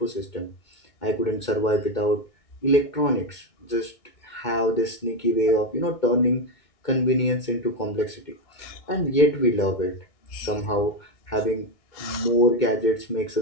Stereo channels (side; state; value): right; late; 2.2 ms